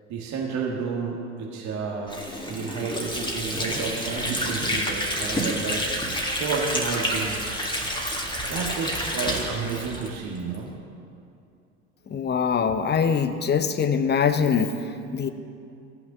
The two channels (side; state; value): both; normal; correlation 0.14